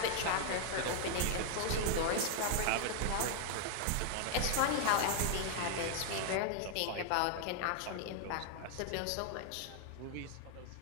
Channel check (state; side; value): different; both; correlation 0.00